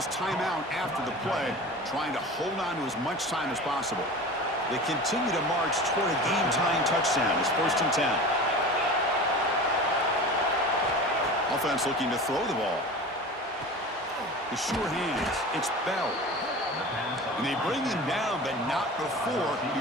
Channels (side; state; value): both; normal; correlation 0.35